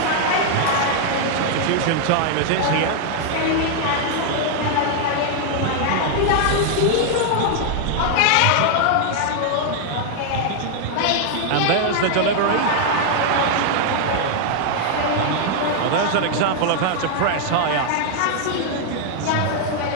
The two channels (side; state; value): both; different; correlation 0.00